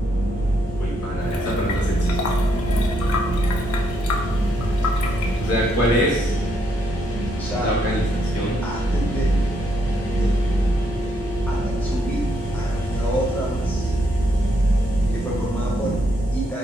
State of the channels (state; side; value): normal; both; correlation 0.75